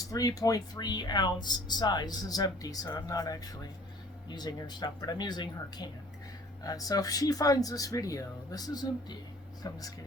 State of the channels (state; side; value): normal; both; correlation 0.53